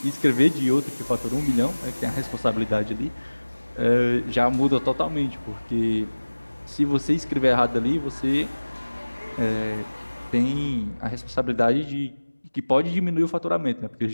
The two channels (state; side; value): inverted; both; correlation -1.00